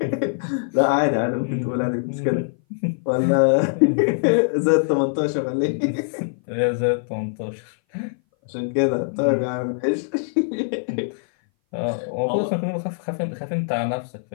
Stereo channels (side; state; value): right; silent; 59 dB below the other